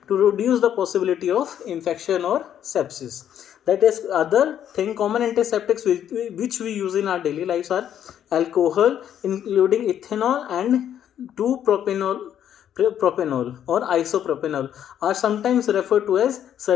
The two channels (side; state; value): right; quieter; 10.0 dB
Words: to reduce the possibility of infection or sepsis. That is, other thing, common antiseptics which we use in our daily lives are alcohol, including ethanol and 2-propanol or isopropanol, are sometimes referred to as